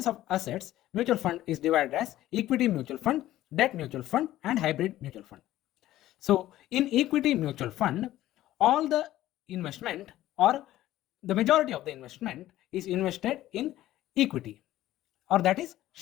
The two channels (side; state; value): right; quieter; 14.5 dB